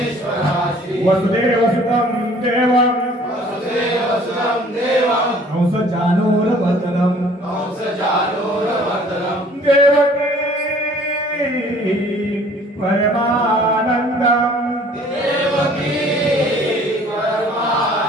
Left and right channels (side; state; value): both; normal; correlation 0.54